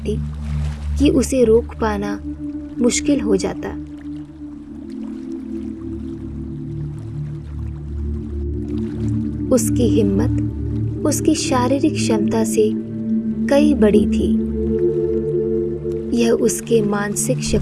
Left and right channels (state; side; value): identical; both; correlation 1.00